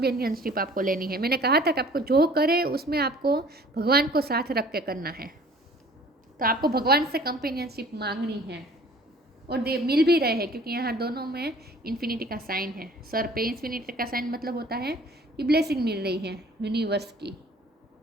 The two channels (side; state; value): both; normal; correlation 0.51